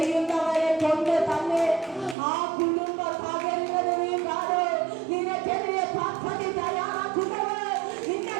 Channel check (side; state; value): left; drops out; at 2.1 s